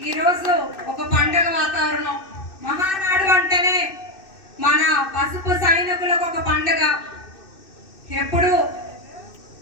ఈరోజు ఒక పండుగ వాతావరణం. మహానాడు అంటేనే మన పసుపు సైనికులకు ఒక పండుగ. ఎప్పుడు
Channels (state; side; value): late; right; 2.6 ms